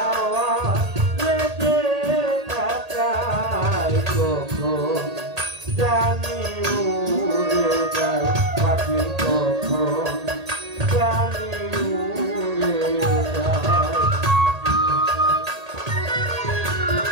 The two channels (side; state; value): left; late; 1.8 ms